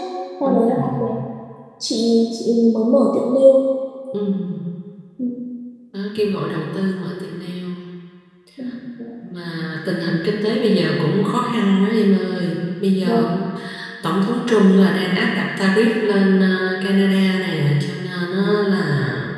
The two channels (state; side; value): identical; both; correlation 1.00